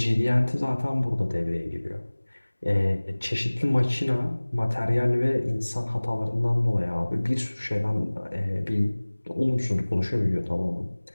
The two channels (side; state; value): both; inverted; correlation -1.00